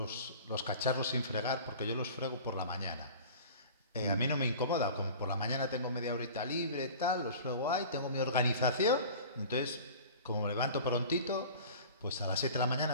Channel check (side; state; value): both; inverted; correlation -0.40